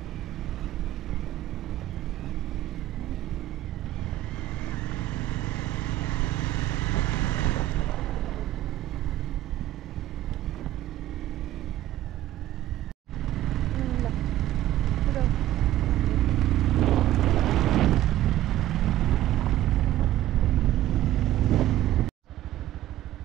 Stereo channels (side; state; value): left; quieter; 14.0 dB